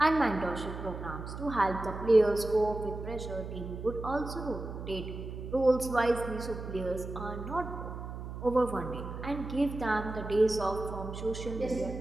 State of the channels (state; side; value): noise; right; hum, 8 dB below the sound